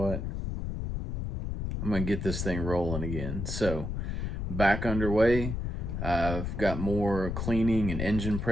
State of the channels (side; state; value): left; noise; rumble, 3 dB below the sound